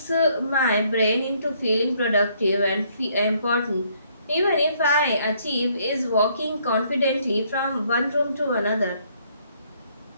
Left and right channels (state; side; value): inverted; both; correlation -0.67